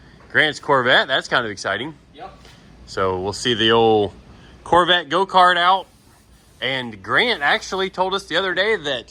Grant's Corvette. That's kind of exciting. Yep. So we'll see the old Corvette go-kart out. And Grant actually told us the other day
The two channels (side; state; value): both; identical; correlation 1.00